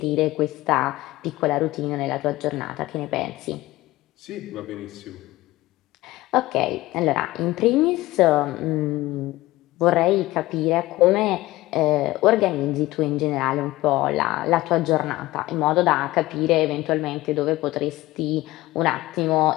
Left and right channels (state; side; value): quieter; right; 18.2 dB